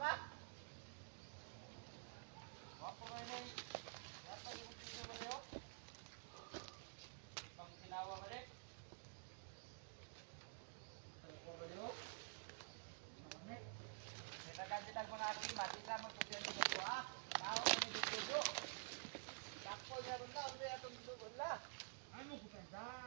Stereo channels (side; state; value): left; silent; digital silence